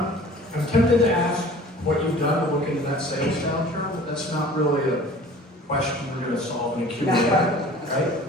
tempted to ask what you've done to look into that sales downturn, but that's not really a question we're going to solve in a Q&A, right?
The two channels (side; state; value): both; normal; correlation 0.46